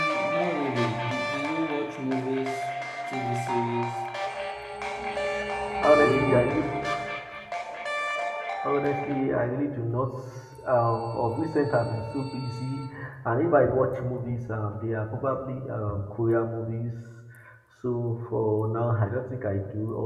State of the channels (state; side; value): identical; both; correlation 1.00